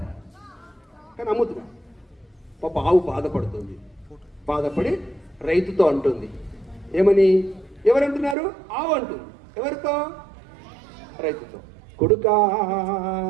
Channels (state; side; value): drops out; left; at 8.3 s